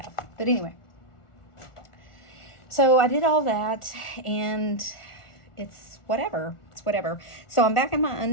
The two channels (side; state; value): right; late; 1.4 ms